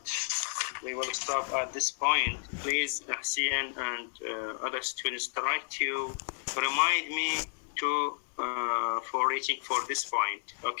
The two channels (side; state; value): right; silent; digital silence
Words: we will stop at this point. Please, Ahsian and other students, try to remind me for reaching for this point.